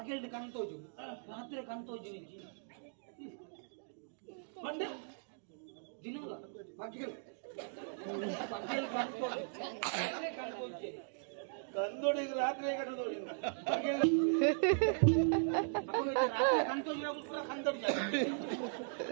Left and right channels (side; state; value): left; silent; digital silence